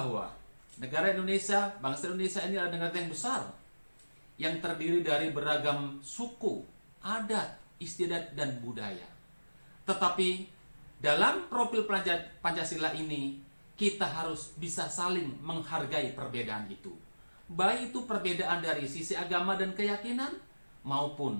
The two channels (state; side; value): inverted; both; correlation -1.00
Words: negara Indonesia, bangsa Indonesia ini adalah negara yang besar yang terdiri dari beragam suku, adat, istiadat, dan budaya. Tetapi dalam profil Pancasila ini, kita harus bisa saling menghargai perbedaan itu. Baik itu perbedaan dari sisi agama dan keyakinan,